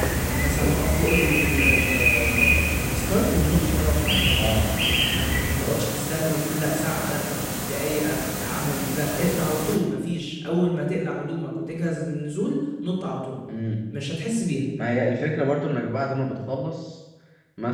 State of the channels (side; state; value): both; identical; correlation 1.00